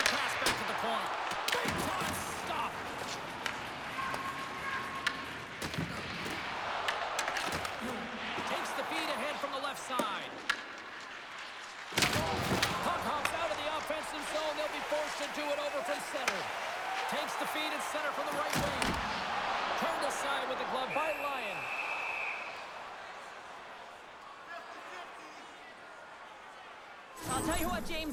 pass back to the point. Big time stop. Takes the feed ahead from the left side. Puck hops out of the offensive zone. They'll be forced to do it over from center. Takes the feed at center from the right wing. Turned aside with the glove by Lyon. I'll tell you what,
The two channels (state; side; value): identical; both; correlation 1.00